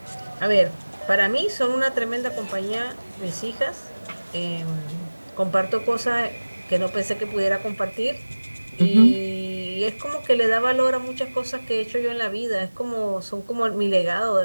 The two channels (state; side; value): inverted; both; correlation -1.00